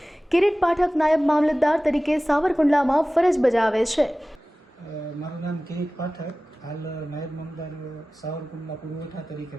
કિરીટ પાઠક નાયબ મામલતદાર તરીકે સાવરકુંડલામાં ફરજ બજાવે છે। મારું નામ કિરીટ પાઠક, હાલ નાયબ મામલતદાર સાવરકુંડલા પુરવઠા તરીકે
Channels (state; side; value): normal; both; correlation 0.97